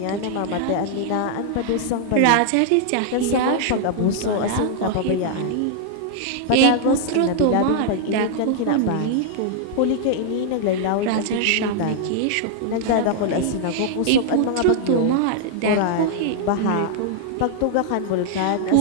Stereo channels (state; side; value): different; both; correlation -0.01